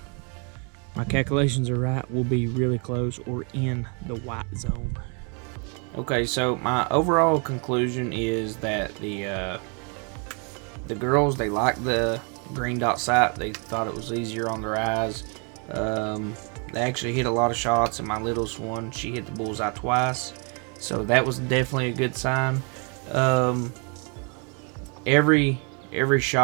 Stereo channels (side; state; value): left; quieter; 36.4 dB